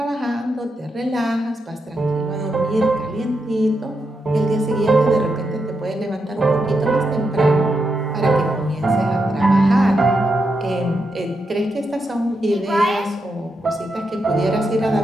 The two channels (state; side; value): normal; both; correlation 0.84